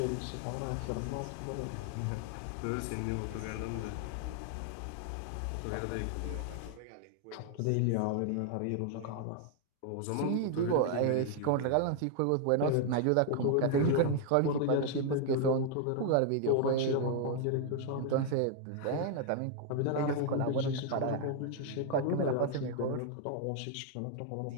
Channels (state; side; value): different; both; correlation 0.00